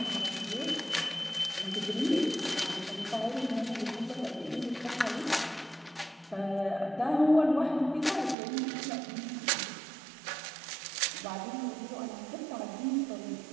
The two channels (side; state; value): left; drops out; at 8.3 s